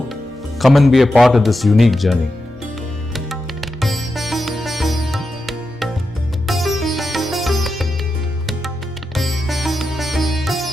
Come and be a part of this unique journey.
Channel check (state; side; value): normal; both; correlation 0.89